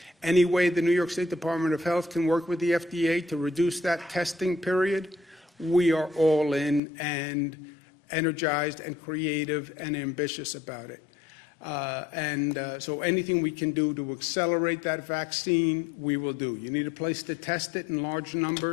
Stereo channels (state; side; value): drops out; right; at 6.8 s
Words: Any way the New York State Department of Health can work with the FDA to reduce that testing period, we are all in and energized and creative and ambitious about it. So anything we can do to accelerate that vaccine, we will do. You need a place to test it in large